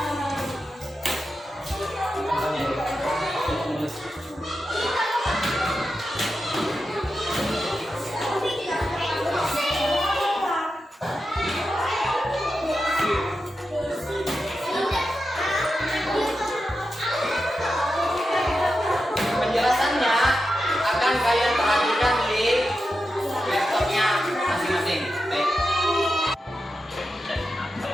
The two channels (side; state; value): both; normal; correlation 0.89